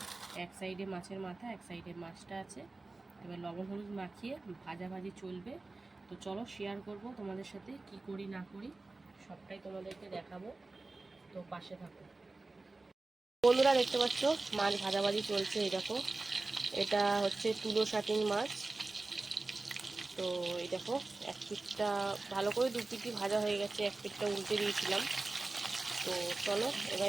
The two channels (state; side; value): quieter; left; 3.3 dB